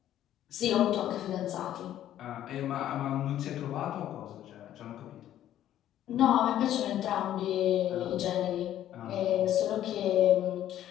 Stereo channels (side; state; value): right; quieter; 11.9 dB